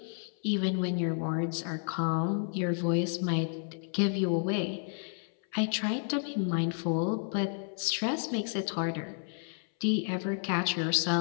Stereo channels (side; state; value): right; silent; 57 dB below the other